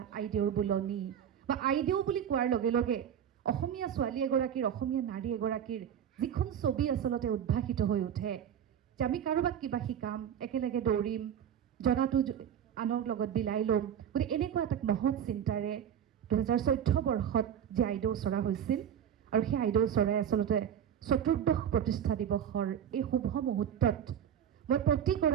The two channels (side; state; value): left; quieter; 9.1 dB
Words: আইদেউৰ বোলনি বা আইদেউ বুলি কোৱাৰ লগে লগে অসমীয়া ছোৱালী এগৰাকীৰ, অসমীয়া নাৰী এগৰাকীৰ যিখন ছবি আচলতে উদ্ভাসিত হৈ উঠে যে আমি কাৰোবাক কিবা শিকাম, একেলগে দৌৰিম, জনাটো আনৰ লগত বিলাই ল'ম। গতিকে এনেকুৱা এটা মহৎ চিন্তাৰে ২০১৪ বৰ্ষত যে আইদেউ চৰা হৈছিল, আৰু সেই আইদেউ চৰাই আচলতে ৪ৰ্থ প্ৰতিষ্ঠা দিৱসৰ এই শুভ মুহূৰ্তত মই